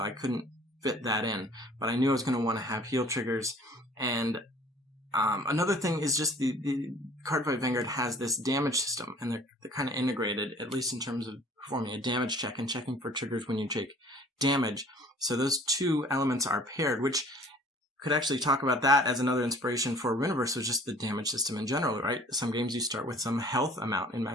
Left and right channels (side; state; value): both; normal; correlation 0.51